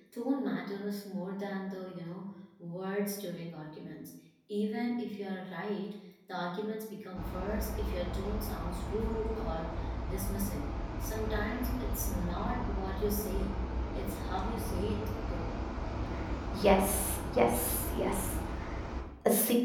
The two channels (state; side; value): identical; both; correlation 1.00